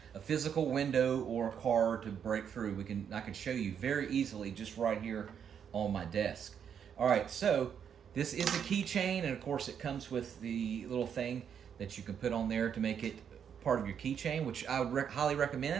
a physical window or a car to break through. I can show you very easily just right here on my desk. All right, so this is a keychain, and of course it comes with the little thing that you can put on there to make it part of your keychain, which I would highly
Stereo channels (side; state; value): left; quieter; 8.0 dB